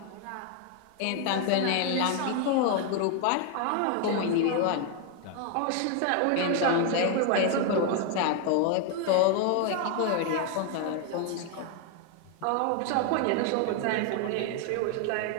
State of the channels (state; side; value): different; both; correlation 0.01